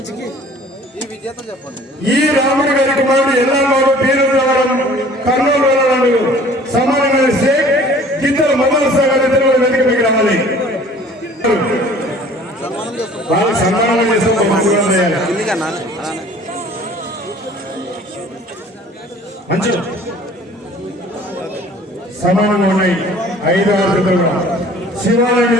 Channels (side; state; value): both; normal; correlation 0.50